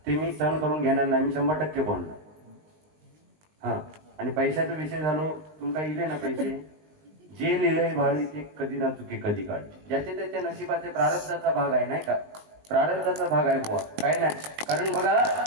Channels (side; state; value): left; late; 19 ms